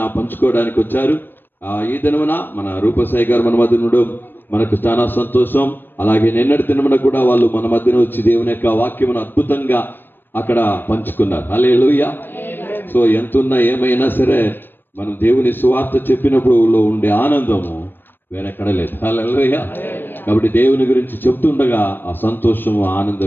పంచుకోవడానికి వచ్చారు. ఈ దినమున మన రూపసాయి గారు మన మధ్య ఉండడం మనకు చాలా సంతోషం. అలాగే నిన్నటి దినమున కూడా వాళ్ళు మన మధ్యన వచ్చి దేవుని యొక్క వాక్యమును అద్భుతంగా అక్కడ పంచుకున్నారు. హల్లెలూయా. సో ఎంతున్నా ఏమైనా సరే మనం దేవుని సువార్త చెప్పినప్పుడు ఉండే ఆనందము వేరెక్కడ లేదు. హల్లెలూయా. కాబట్టి దేవుని గురించి చెప్తుండగా ఆ సంతోషము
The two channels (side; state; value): right; late; 0.095 ms